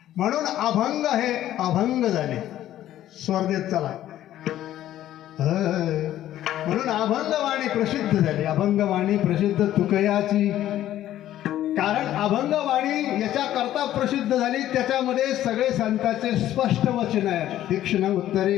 म्हणून अभंग हे अभंग झाले. स्वर्गेत चला. म्हणून अभंगवाणी प्रसिद्ध झाली. अभंगवाणी प्रसिद्ध तुकयाची. कारण अभंगवाणी याच्या करता प्रसिद्ध झाली, त्याच्यामध्ये सगळे संतांचे स्पष्ट वचन आहे. तीक्ष्ण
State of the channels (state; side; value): quieter; right; 12.8 dB